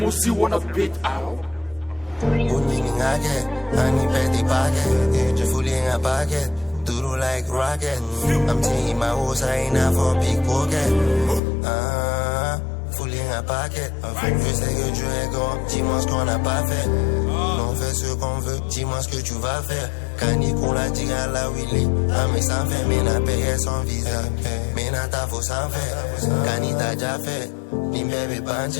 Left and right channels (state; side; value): drops out; right; at 11.4 s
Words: wanna beat out. Unini ngake, angiphethe pocket, fully in a pocket, duro like rocket. I'm taking my horse, I ain't out for a big pocket. Fully in a pocket. Je sais que Dieu est grand, dis-moi ce qu'on n'a pas fait. On fait ce qu'on veut, dis-moi ce que tu vas faire. Canicou l'a dit à la Willy, mais ça fait, mais n'a payé son visa. Mais n'a ta faux sans faire, Cani t'a déjà fait. Ni bébé banche,